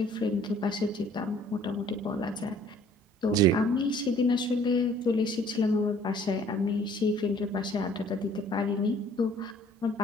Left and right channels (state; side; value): normal; both; correlation 0.56